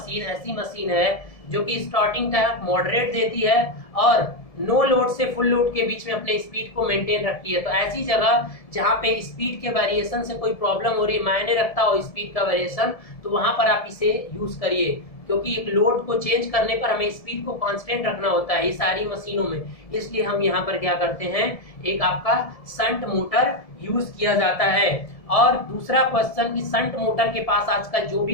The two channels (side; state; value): right; late; 1.7 ms